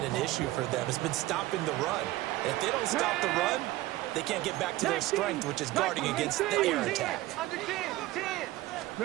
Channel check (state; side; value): quieter; left; 17.3 dB